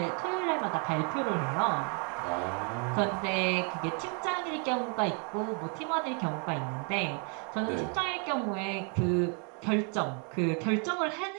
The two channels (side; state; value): left; quieter; 37.1 dB